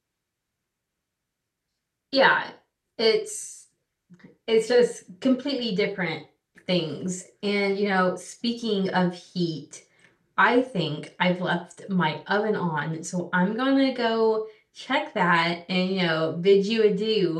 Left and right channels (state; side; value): identical; both; correlation 1.00